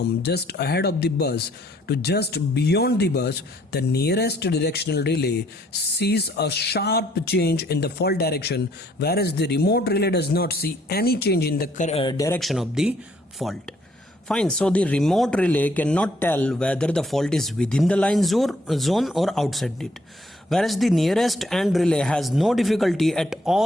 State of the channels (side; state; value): both; normal; correlation 0.66